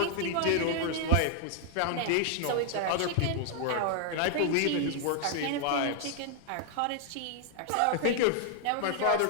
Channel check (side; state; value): both; different; correlation 0.00